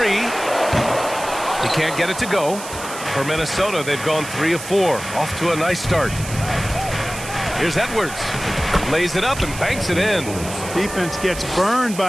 He can't get it to go. For Minnesota, they've gone 3 of 4. Off to a nice start. Here's Edwards. Lays it up and banks it in. Defense gets burned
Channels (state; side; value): noise; right; hiss, 11 dB below the sound